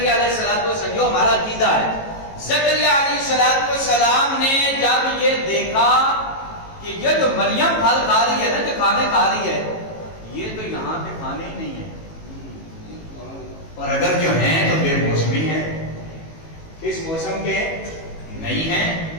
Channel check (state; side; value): late; right; 18 ms